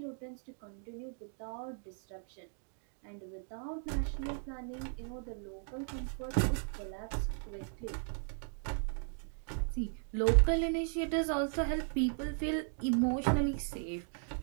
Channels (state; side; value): silent; left; 53 dB below the other